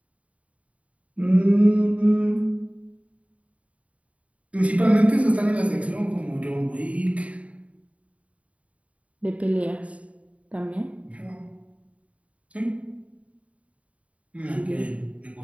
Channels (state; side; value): late; left; 0.066 ms